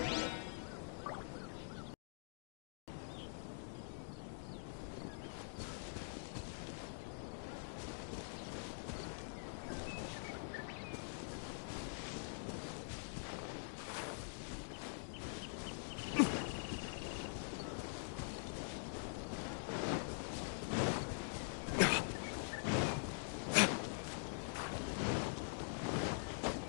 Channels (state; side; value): silent; right; digital silence